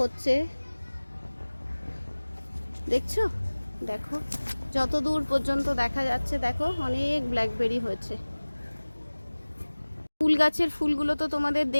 দেখছো। দেখো যত দূর পর্যন্ত দেখা যাচ্ছে, দেখো অনেক ব্ল্যাকবেরি হয়েছে। ফুল গাছের ফুলগুলো তো তোমাদের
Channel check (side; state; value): both; inverted; correlation -1.00